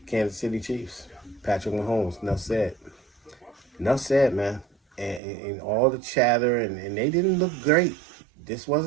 Kansas City Chiefs, Patrick Mahomes. Enough said, man. And all the chatter, and they didn't look great. This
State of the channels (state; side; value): drops out; left; at 5.2 s